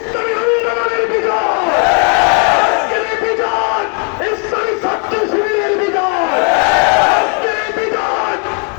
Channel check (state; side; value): quieter; right; 39.8 dB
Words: আন্দোলনের বিজয়, আজকের এই বিজয় ইসলামী ছাত্র শিবিরের বিজয়, আজকের এই বিজয়